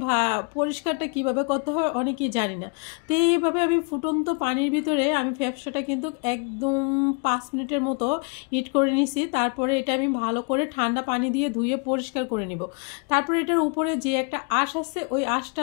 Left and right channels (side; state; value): right; quieter; 37.7 dB